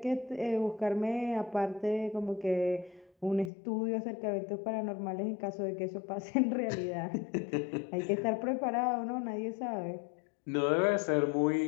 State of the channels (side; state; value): right; drops out; at 3.5 s